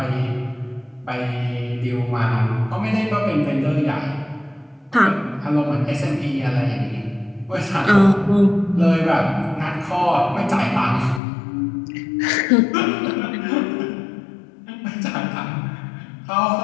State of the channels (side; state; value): right; drops out; at 11.2 s